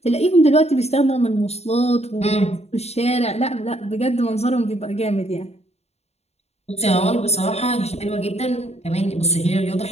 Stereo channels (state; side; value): late; right; 0.31 ms